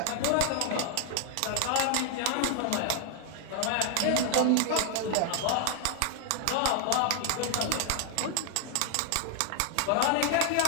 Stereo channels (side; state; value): both; different; correlation 0.00